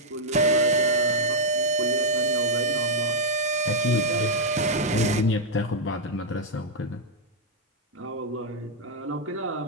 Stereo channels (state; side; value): normal; both; correlation -0.04